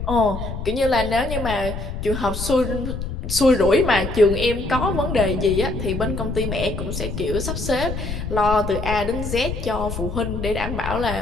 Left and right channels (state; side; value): noise; left; rumble, 6 dB below the sound